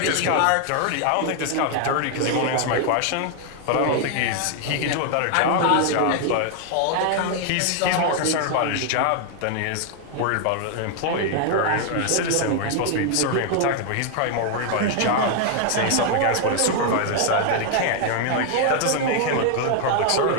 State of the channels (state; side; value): different; both; correlation 0.00